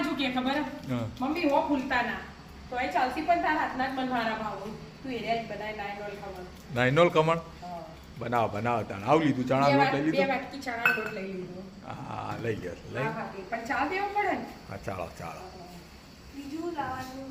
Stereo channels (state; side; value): identical; both; correlation 1.00